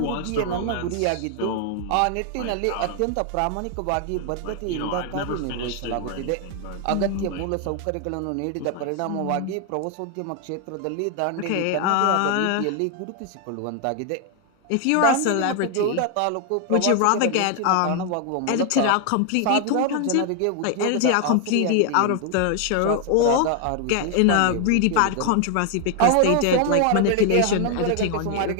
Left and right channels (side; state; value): both; different; correlation 0.00